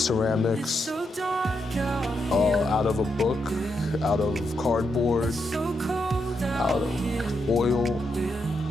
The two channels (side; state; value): both; normal; correlation 0.82